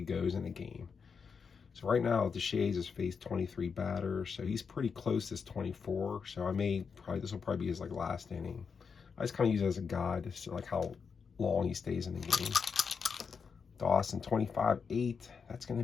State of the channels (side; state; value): right; quieter; 5.8 dB